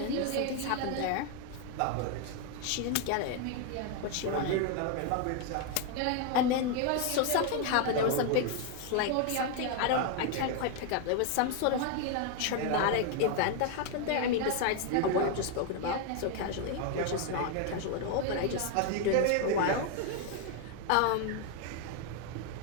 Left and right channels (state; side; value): different; both; correlation 0.01